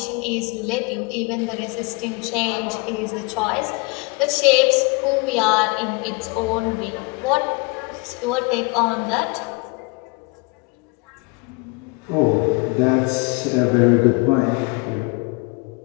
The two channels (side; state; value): right; quieter; 29.1 dB